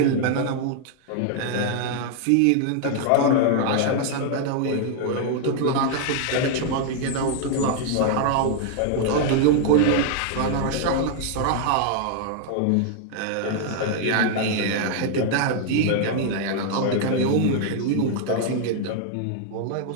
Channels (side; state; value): both; different; correlation 0.00